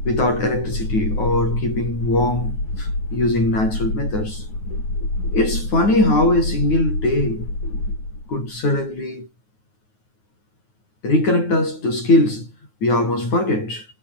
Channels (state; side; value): late; right; 9.4 ms